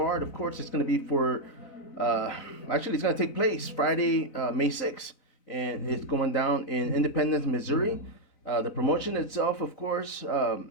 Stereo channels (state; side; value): late; right; 4.0 ms